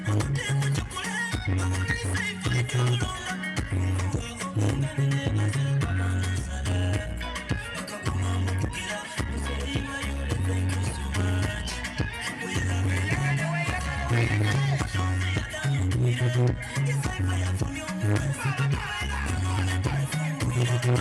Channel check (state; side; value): identical; both; correlation 1.00